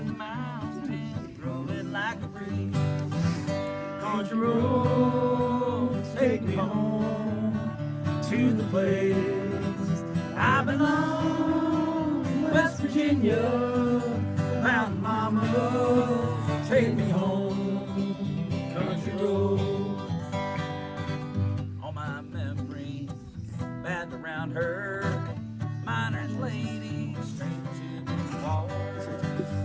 the mountains, growing like a breeze. Country roads take me home to the place I belong, West Virginia. Mountain mama, take me home, country road. All my memories back around her, miner's lady, straight to the water.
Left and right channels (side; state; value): both; identical; correlation 1.00